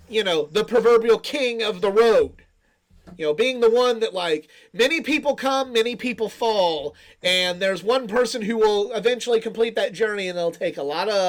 the proverbial king of the road. Being the one that, like, many people come, many people fall, and there's one person who will eventually complete that journey, and it'll take a lot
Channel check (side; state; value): both; identical; correlation 1.00